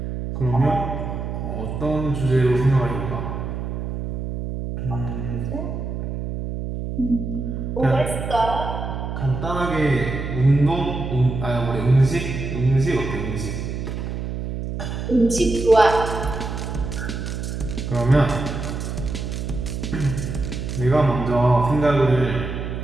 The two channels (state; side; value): noise; right; hum, 5 dB below the sound